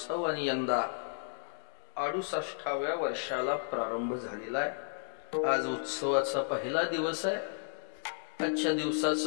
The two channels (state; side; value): silent; right; digital silence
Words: आणि यंदा 68व्या वर्षाला प्रारंभ झालेला आहे। आज उत्सवाचा पहिला दिवस आहे। आजच्या